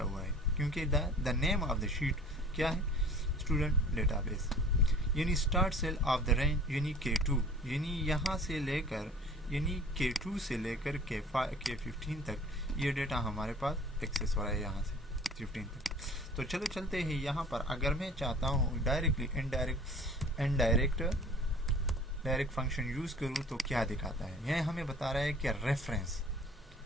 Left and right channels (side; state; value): both; normal; correlation 0.47